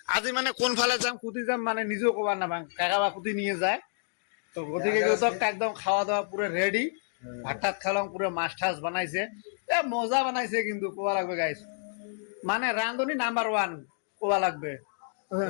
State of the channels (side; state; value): right; silent; digital silence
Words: আজি মানে কোন ফালে যাম কুতি যাম মানে নিজেও কবার না পাং, কাকা বা কুতি নিয়ে যায়। তো গতিকে একদম খাওয়া দাওয়া পুরো রেডি, ভাত টাত খালাম, পুরো মাছ টাছ বানাইছে, এ মজা বানাইছে কিন্তু কোয়া লাগবে গাইস, মানে রান্ধনি নাম্বার ওয়ান কোয়া লাগবে।